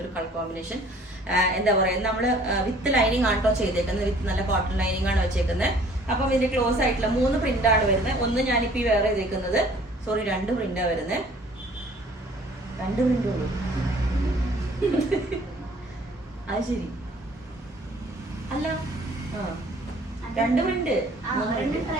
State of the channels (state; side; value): normal; both; correlation 0.54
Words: ഒരു കളർ കോമ്പിനേഷൻ എന്താ പറയുക, നമ്മൾ വിത്ത് ലൈനിങ് ആണോ ചെയ്തേക്കുന്നത്, വിത്ത് നല്ല കോട്ടൺ ലൈനിങ് ആണ് വെച്ചേക്കുന്നത്. അപ്പം ഇതിന്റെ ക്ലോസ് ആയിട്ടുള്ള 3 പ്രിന്റ് ആണ് വരുന്നത്. ഒന്ന് ഞാനിപ്പോ ഈ വേറെ ചെയ്തേക്കുന്നത്, സോറി 2 പ്രിന്റാ വരുന്നത്. 2 പ്രിന്റ് ഉള്ളൂ. അത് ശരി അല്ല, 2 പ്രിന്റ് 3